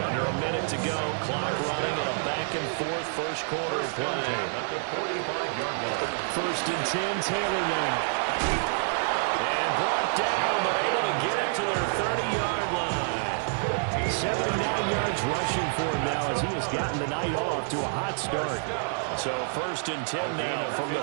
Under a minute to go, clock running and a back-and-forth first quarter of play. At the 45-yard line. First and 10, Taylor now. And brought down, but able to get it to their 30-yard line. 79 yards rushing for him now as he has gotten the night off to a hot start. So first and 10 now from the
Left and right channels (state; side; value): silent; left; digital silence